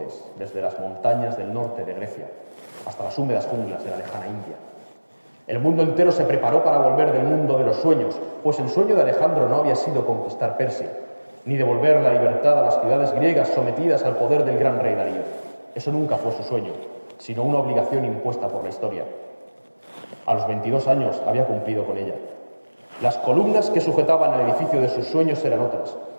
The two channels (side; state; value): both; inverted; correlation -1.00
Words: desde las montañas del norte de Grecia hasta las húmedas junglas de la lejana India. El mundo entero se preparó para volver del mundo de los sueños, pues el sueño de Alejandro no había sido conquistar Persia, ni devolver la libertad a las ciudades griegas sometidas al poder del gran rey Darío. Eso nunca fue su sueño, sino una obligación impuesta por la historia. A los 22 años había cumplido con ella. Las columnas que sujetaban el edificio de sus sueños eran otras: